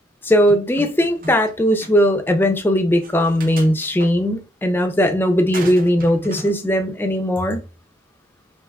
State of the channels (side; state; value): both; normal; correlation 0.74